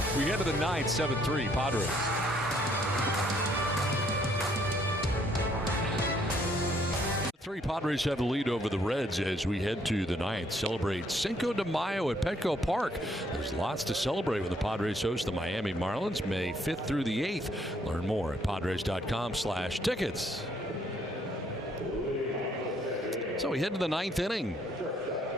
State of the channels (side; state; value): both; normal; correlation 0.68